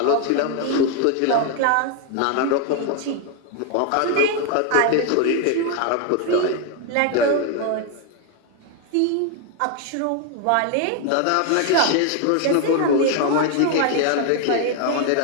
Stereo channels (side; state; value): both; different; correlation 0.01